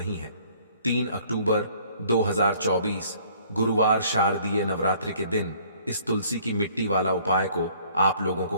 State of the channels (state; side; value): inverted; both; correlation -0.59